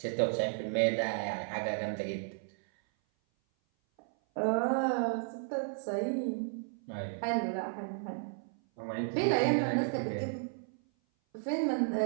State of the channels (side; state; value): left; silent; 55 dB below the other